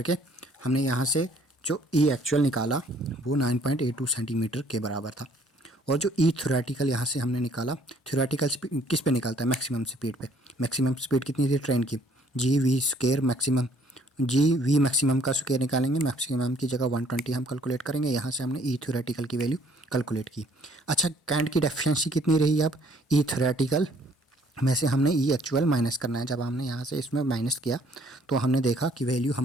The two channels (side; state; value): both; normal; correlation 0.61